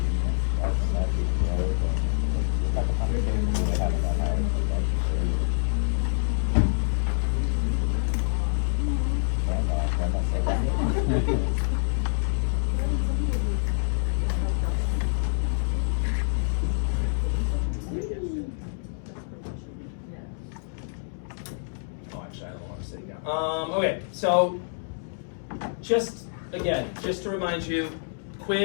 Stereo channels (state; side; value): silent; right; digital silence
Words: actually, I don't want to sit down. Okay, so just to remind you,